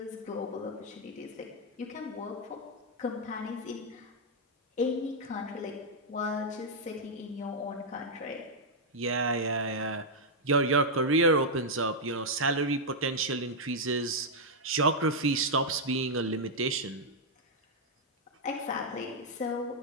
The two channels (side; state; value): both; normal; correlation -0.04